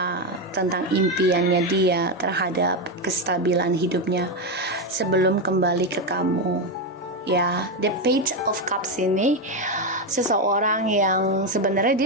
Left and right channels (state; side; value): normal; both; correlation 0.09